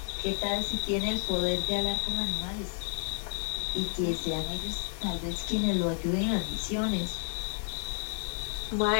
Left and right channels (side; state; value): right; silent; 57 dB below the other